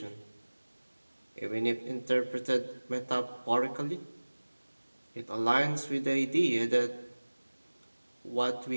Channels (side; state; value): both; inverted; correlation -1.00